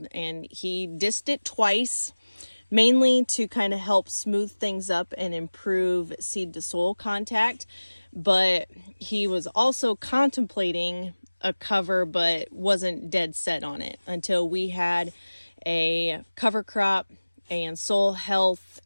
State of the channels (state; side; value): inverted; both; correlation -1.00